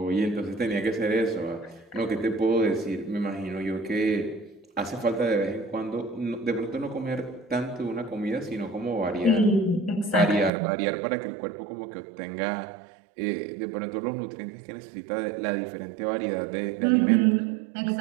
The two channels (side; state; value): left; drops out; at 10.5 s